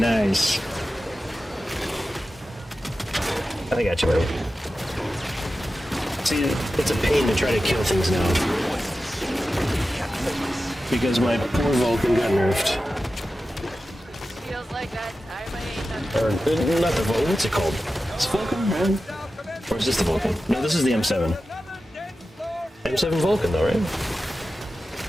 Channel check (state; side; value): normal; both; correlation 0.93